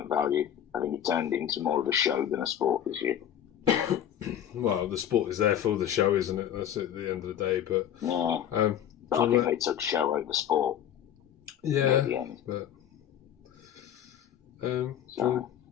value. I think it turned into more of a show than a sport this year. Well, the sport is there for the show, isn't it? That's at the end of the day. But yeah, but I think they took show over sport. Yeah, at the end. But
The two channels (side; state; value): right; quieter; 10.1 dB